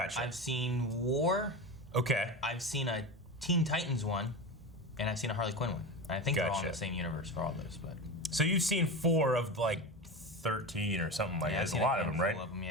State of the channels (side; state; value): both; normal; correlation 0.24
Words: I've seen War. Okay. I've seen a Teen Titans one. And I've seen a Harley Quinn one. I think they're all in Gotcha. the same universe for all those, but... So you've seen 4 of like 13 or something like that. There's a lot of them, right? All of them,